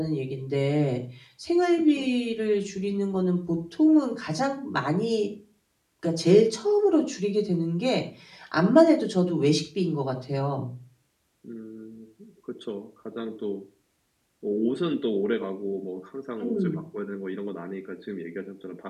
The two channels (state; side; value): identical; both; correlation 1.00